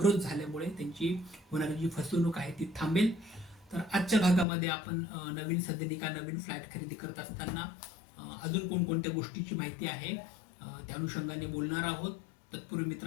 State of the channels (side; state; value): right; drops out; at 4.5 s